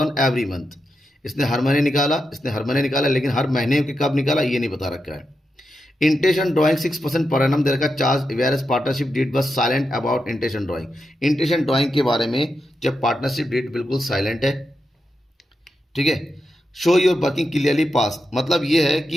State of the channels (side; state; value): both; normal; correlation 0.87